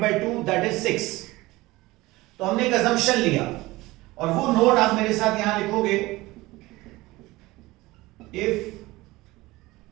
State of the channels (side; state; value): left; quieter; 19.9 dB